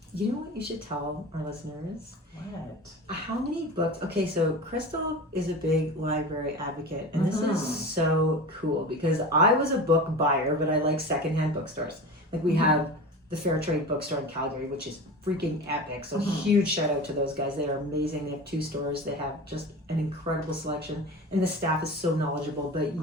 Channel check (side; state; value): both; normal; correlation 0.31